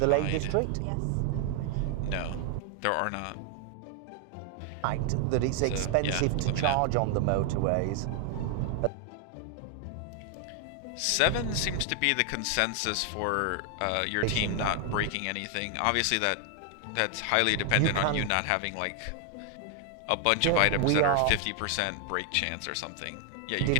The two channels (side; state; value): both; different; correlation 0.00